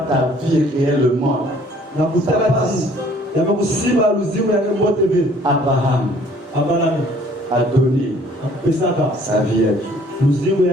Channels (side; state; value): both; normal; correlation 0.57